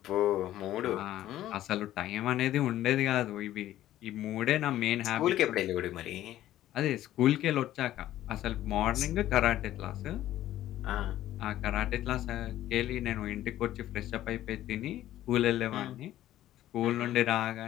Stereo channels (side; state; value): right; quieter; 13.5 dB